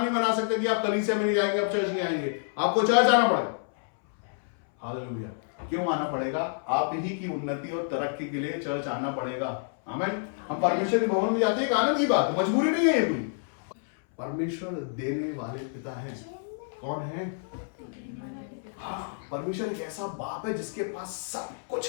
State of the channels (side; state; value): right; silent; 59 dB below the other